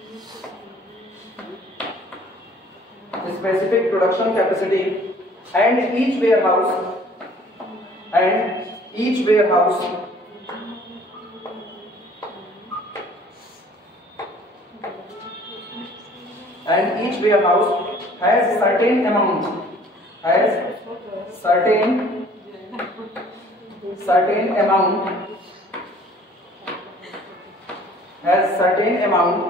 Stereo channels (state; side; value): normal; both; correlation 0.54